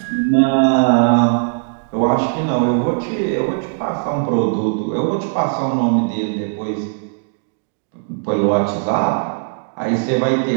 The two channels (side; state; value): left; silent; digital silence